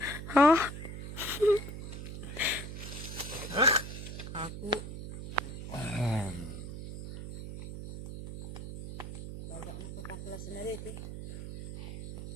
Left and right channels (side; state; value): right; noise; hum, 8 dB below the sound